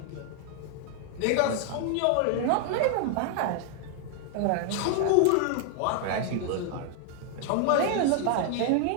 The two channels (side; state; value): both; different; correlation 0.00